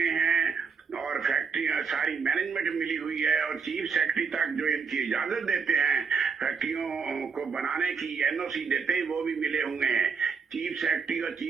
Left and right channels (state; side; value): quieter; left; 5.6 dB